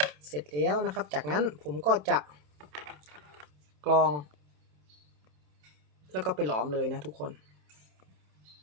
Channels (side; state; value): left; late; 27 ms